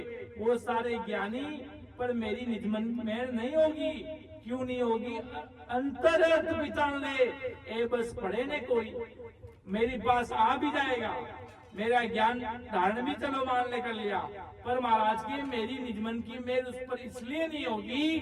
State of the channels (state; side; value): identical; both; correlation 1.00